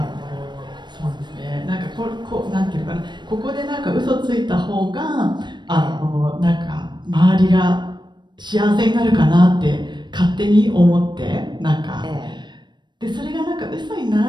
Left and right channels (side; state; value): left; late; 0.22 ms